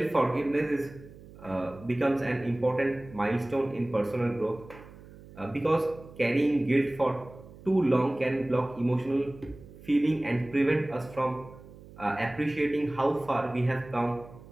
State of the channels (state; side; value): noise; right; hum, 19 dB below the sound